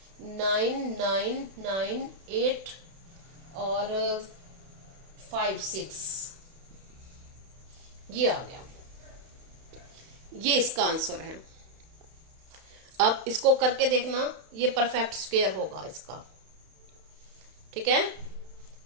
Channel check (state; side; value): late; left; 31 ms